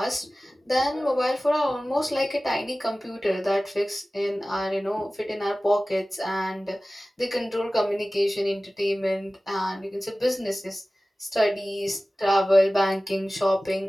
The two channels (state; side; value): normal; both; correlation 0.97